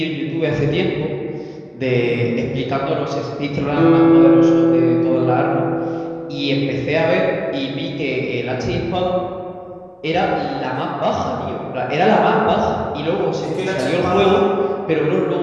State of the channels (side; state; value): both; identical; correlation 1.00